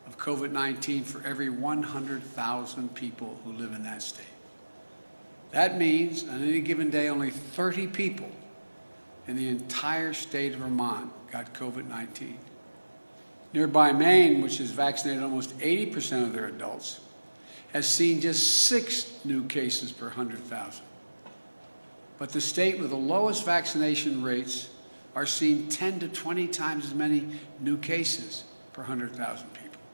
of COVID-19 for every 100,000 people who live in that state. That means on any given day, only 30 people in the entire state of Vermont got COVID-19. Nearby Maine, which has vaccinated almost 80% of their adults, has seen just 6 new cases per 100,000. But the state with the lowest vaccination rates are seeing 10 to 20 times as many new cases per 100,000 people.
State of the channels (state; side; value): inverted; both; correlation -1.00